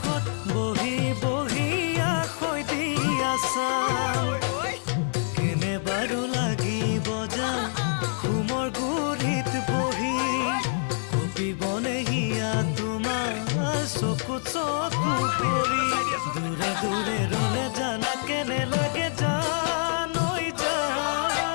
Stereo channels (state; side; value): silent; right; 61 dB below the other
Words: বহি বহি আখৈ দি আছাম কেনে বাৰু ঘুমৰ গুৰিত বহি কপিবনে হিয়া তোমাৰ চকু চকু পৰি দূৰে দূৰে ৰলে জানা কেনে লাগে জানৈ